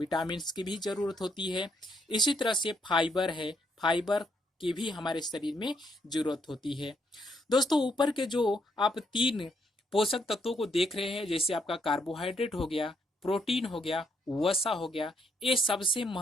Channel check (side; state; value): both; normal; correlation 0.74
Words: की भी जरूरत होती है। इसी तरह से फाइबर है, फाइबर की भी हमारे शरीर में जरूरत होती है। दोस्तों, ऊपर के जो आप 3 पोषक तत्वों को देख रहे हैं, जैसे आपका कार्बोहाइड्रेट हो गया, प्रोटीन हो गया, वसा हो गया, ये सबसे